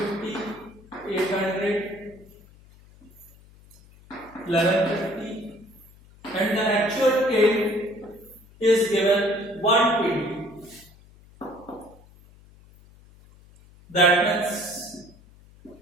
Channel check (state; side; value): noise; left; hum, 25 dB below the sound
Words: 800, 1150, and the actual yield is given 120. That means